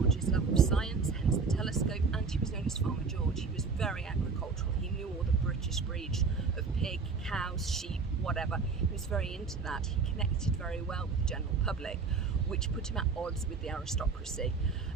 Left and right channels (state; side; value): quieter; left; 4.9 dB